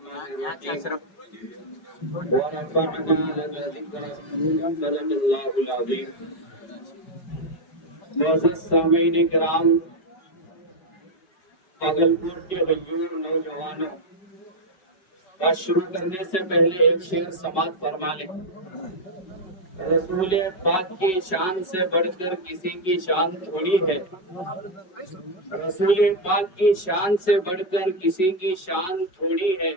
भागलपुर के गयूर नौजवानों, बात शुरू करने से पहले एक शेर समाप्त फरमा ले। रसूल पाक की शान से बढ़कर किसी की शान थोड़ी है। रसूल पाक की शान से बढ़कर किसी की शान थोड़ी है।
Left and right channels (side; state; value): right; late; 5.3 ms